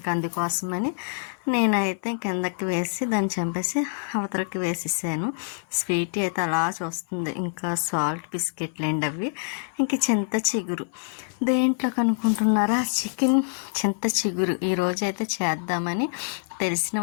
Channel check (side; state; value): right; silent; 58 dB below the other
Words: అందుకోసమని నేనైతే కిందకి వేసి దాన్ని చంపేసి అవతలకి వేసేసాను. స్వీటీ అయితే అలా చూస్తుంది. ఇంకా సాల్ట్ బిస్కెట్లండి అవి. ఇంక చింత చిగురు దేంట్లో కనుక్కుంటున్నారా, చికెన్ చింత చిగురు ఈరోజు అయితే చేద్దామని తెలిసిన